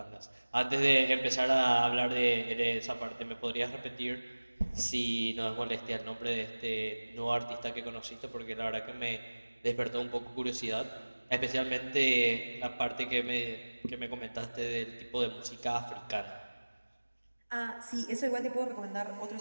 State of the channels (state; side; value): inverted; both; correlation -1.00